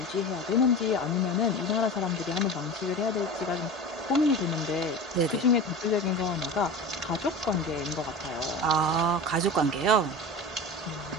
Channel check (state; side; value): normal; both; correlation 0.31